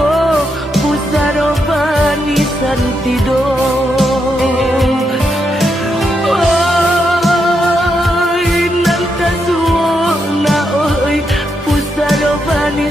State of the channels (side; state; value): both; normal; correlation 0.82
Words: pusaro bani santido oi nanta suo na oi pusaro bani